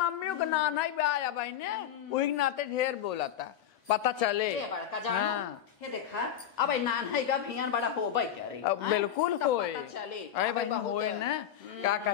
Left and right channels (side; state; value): right; quieter; 9.9 dB